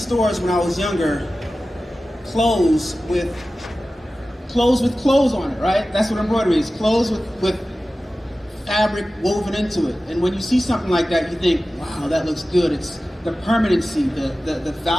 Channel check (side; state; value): both; normal; correlation 0.95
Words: when I was younger, clothes with clothes on it, right? That's what embroidery is, clothes with fabric woven into it. And when you see something like that, you think, wow, that looks good. It's the permanency, the